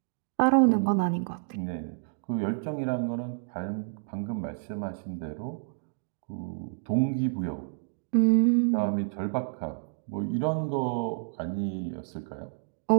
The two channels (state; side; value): silent; left; digital silence